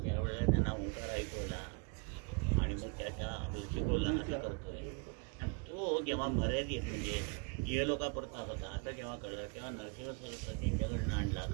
त्यावेळेला त्यांना ओंकार ऐकवला आणि मग त्याच्या शिकवला असं करतोय. आणि तो जेव्हा मर्यादित म्हणजे ये लोकापुरता होता असं जेव्हा कळलं तेव्हा नरसिंह सरस्वती त्यांच्याकडनं आणला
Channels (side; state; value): left; quieter; 33.9 dB